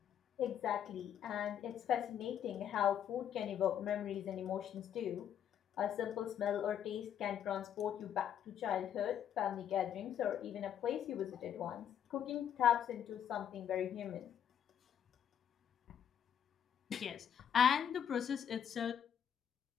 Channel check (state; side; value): quieter; right; 9.2 dB